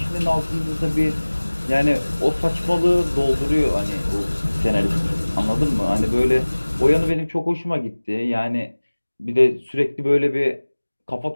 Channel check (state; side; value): inverted; both; correlation -1.00